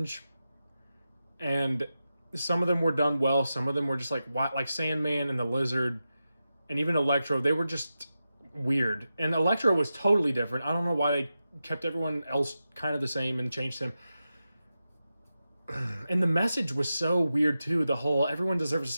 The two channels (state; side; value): inverted; both; correlation -0.91